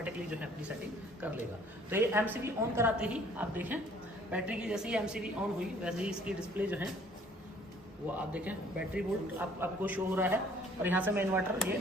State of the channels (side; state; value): both; normal; correlation 0.57